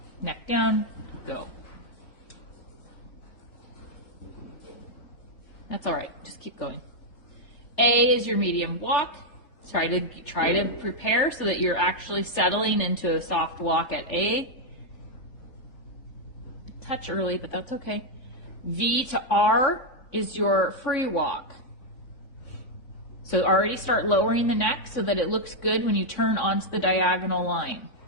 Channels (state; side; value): late; right; 3.4 ms